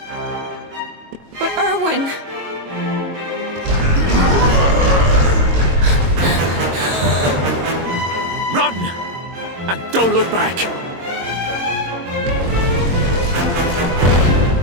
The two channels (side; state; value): left; late; 22 ms